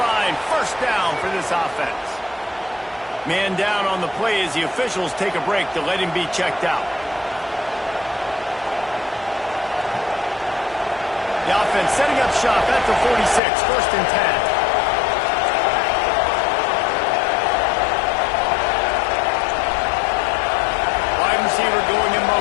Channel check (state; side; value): drops out; right; at 13.4 s